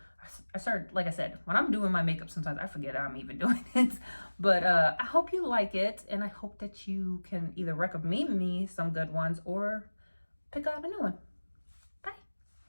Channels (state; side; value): inverted; both; correlation -1.00